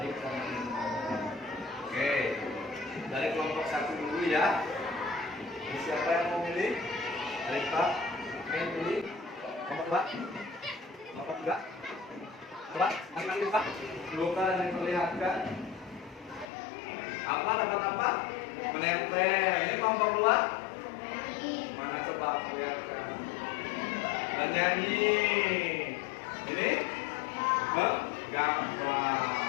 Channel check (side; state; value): right; drops out; at 16.4 s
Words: dan menyenangkan. Oke, dari kelompok 1 dulu ya. Jadi siapa yang mau milih? Dari Pak. Oke, pilih. Kelompok 2. Kelompok 3. Coba, angkat Pak. Bukan diperlihatkan. Apa dapat apa? Menempel. Ini kelompok luar. Mana coba perlihatkan. Menyanyi. Ini gambar.